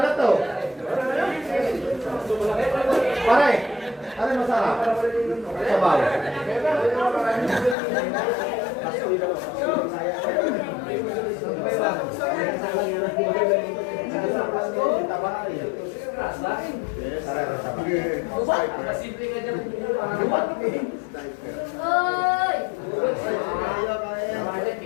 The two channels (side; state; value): right; drops out; at 7.8 s